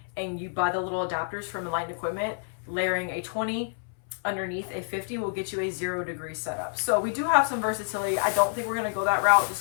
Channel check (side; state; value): right; silent; 59 dB below the other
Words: and you buy the little adapters from Enlightened Equipment, layering a 20 underneath a 50 will get you a 0-degree setup. So we do have some versatility. I don't think we're going to go that route